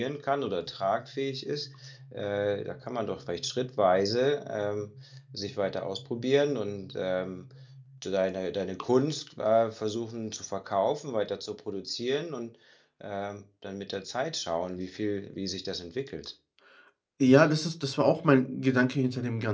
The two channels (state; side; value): identical; both; correlation 1.00